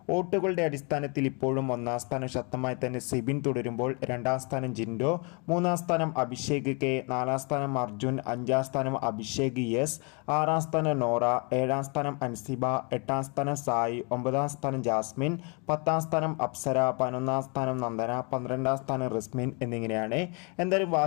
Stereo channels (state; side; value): quieter; right; 33.6 dB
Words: വോട്ടുകളുടെ അടിസ്ഥാനത്തിൽ ഇപ്പോഴും ഒന്നാം സ്ഥാനം ശക്തമായി തന്നെ സിബിൻ തുടരുമ്പോൾ, രണ്ടാം സ്ഥാനം ജിൻഡോ, മൂന്നാം സ്ഥാനം അഭിഷേക് കെ, നാലാം സ്ഥാനം അർജുൻ, അഞ്ചാം സ്ഥാനം അഭിഷേക് എസ്, ആറാം സ്ഥാനം നോറ, ഏഴാം സ്ഥാനം അൻസിബ, എട്ടാം സ്ഥാനം സായി, ഒമ്പതാം സ്ഥാനം ജാസ്മിൻ, പത്താം സ്ഥാനം അപ്സര, 11ാം സ്ഥാനം നന്ദന, 12ാം സ്ഥാനം റിസ്മിൻ എന്നിങ്ങനെയാണ്. എന്തായാലും